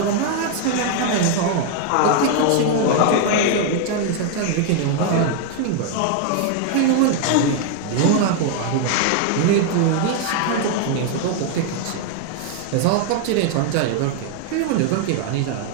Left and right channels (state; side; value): different; both; correlation 0.00